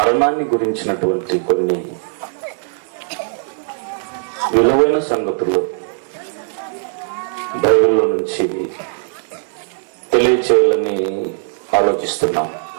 గురించినటువంటి కొన్ని విలువైన సంగతులు బైబిల్లో నుంచి తెలియచేయాలని ఆలోచిస్తున్నాం.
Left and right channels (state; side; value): silent; left; digital silence